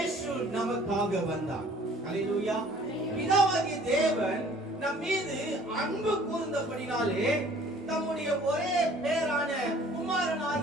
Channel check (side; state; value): both; normal; correlation 0.53